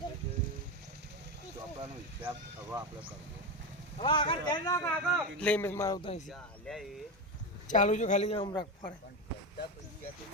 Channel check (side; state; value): both; normal; correlation 0.17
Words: ले मैं मारता है चालू जो खाली हम रख पड़े